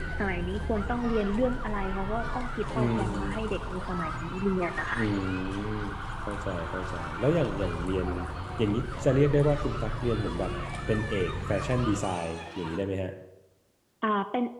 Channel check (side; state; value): both; identical; correlation 1.00